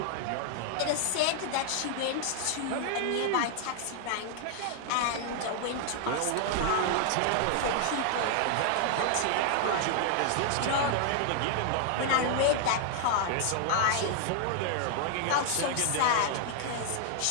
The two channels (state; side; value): different; both; correlation 0.00